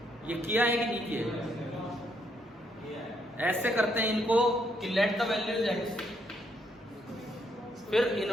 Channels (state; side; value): normal; both; correlation 0.74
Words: ये किया है कि नहीं किया? ऐसे करते हैं इनको कि लेट द वैल्यूज एक्स, फिर